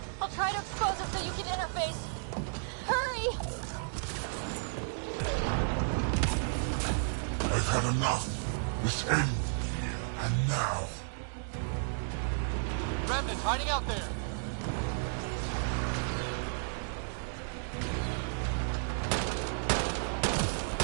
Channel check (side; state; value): left; silent; digital silence